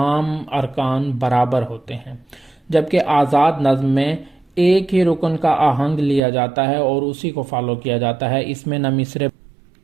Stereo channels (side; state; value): left; drops out; at 6.2 s